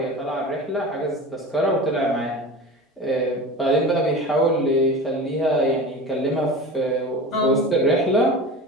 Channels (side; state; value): both; normal; correlation 0.32